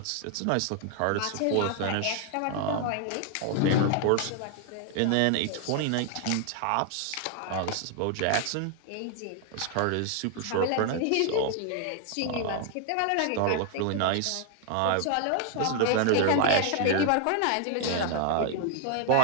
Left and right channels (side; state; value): both; different; correlation 0.00